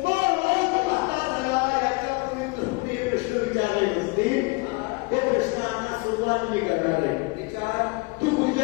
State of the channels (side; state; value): right; quieter; 26.6 dB